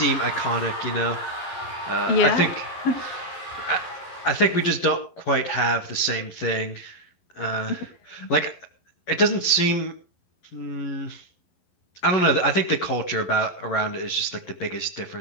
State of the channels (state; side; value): late; right; 11 ms